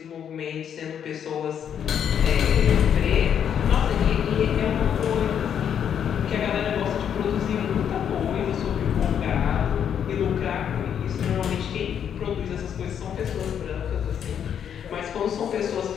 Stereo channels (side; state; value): right; quieter; 8.6 dB